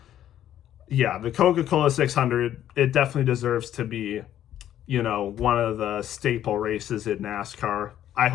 yeah, the Coca-Cola 600, it definitely deserves to be, one of the staple races in NASCAR. I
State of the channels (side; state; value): right; quieter; 11.4 dB